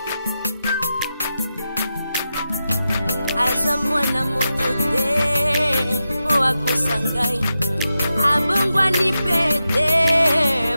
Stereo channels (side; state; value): both; inverted; correlation -0.89